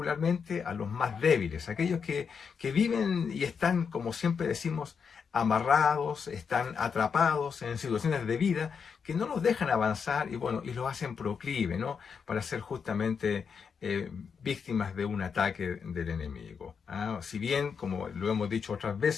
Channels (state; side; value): quieter; right; 6.2 dB